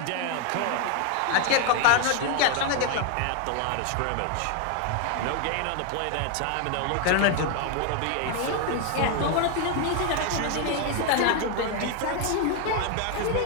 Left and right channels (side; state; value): both; different; correlation 0.01